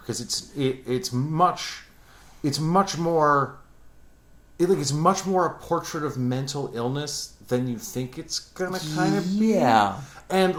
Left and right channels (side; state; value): both; identical; correlation 1.00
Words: it's much more a portrait of mental illness than you think it's gonna kind of be. Yeah. And